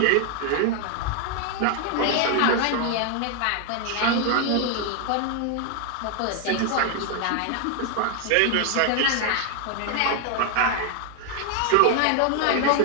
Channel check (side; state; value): both; different; correlation 0.00